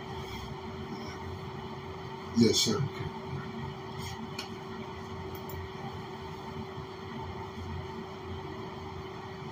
Yes, sir. Okay.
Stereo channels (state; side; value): identical; both; correlation 1.00